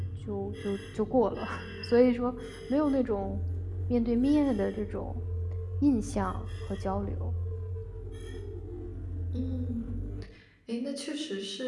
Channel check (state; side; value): identical; both; correlation 1.00